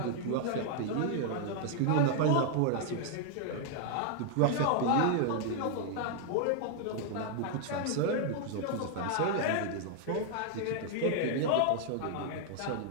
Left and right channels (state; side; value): different; both; correlation 0.00